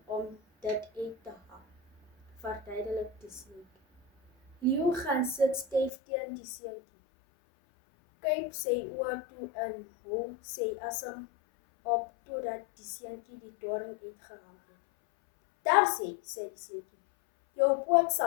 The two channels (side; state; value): right; drops out; at 5.9 s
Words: om dit uit te haal," verduidelik die seentjie. Leeu gaan sit styf teen die seentjie, kyk sy oë toe en hou sy asem op totdat die seentjie die doring uitgehaal het. "Daar sê die seentjie, jou poot